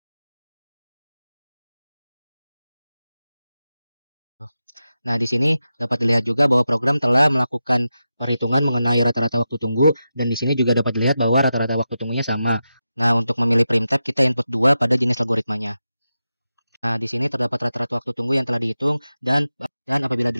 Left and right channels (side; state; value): both; inverted; correlation -0.91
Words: Nah, di sini dapat dilihat juga bahwa program telah melakukan perhitungan mengenai rata-rata waktu tunggu, dan di sini juga dapat dilihat bahwa rata-rata waktu tunggunya sama. Nah, untuk memilih primtype kita input 2 pada jenis algoritmanya. Nah, di sini terdapat rata-rata waktu tunggu yang telah dihitung dan apabila